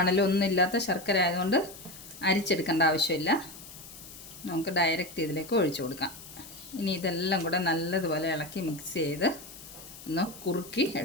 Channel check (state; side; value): noise; left; hiss, 16 dB below the sound